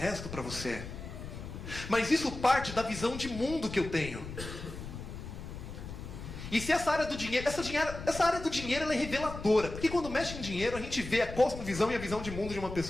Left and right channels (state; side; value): noise; left; rumble, 10 dB below the sound